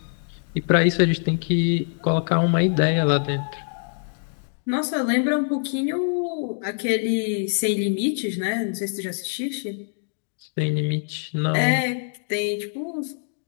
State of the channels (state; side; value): silent; right; digital silence